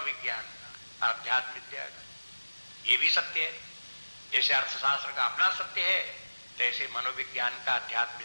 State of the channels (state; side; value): inverted; both; correlation -1.00